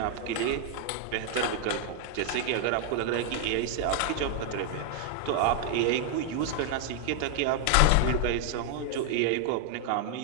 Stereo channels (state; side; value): different; both; correlation 0.00